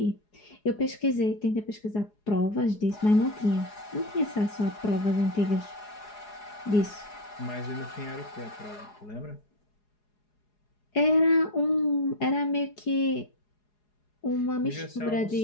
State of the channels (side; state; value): right; late; 4.8 ms